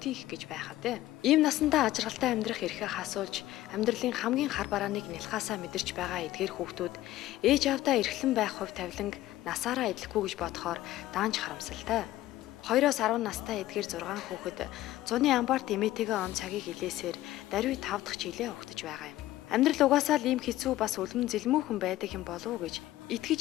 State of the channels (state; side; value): quieter; right; 15.3 dB